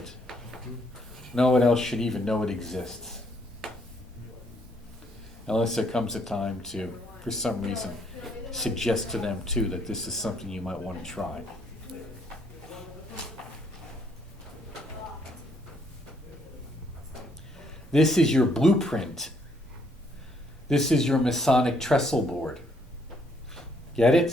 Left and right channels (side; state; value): both; normal; correlation 0.69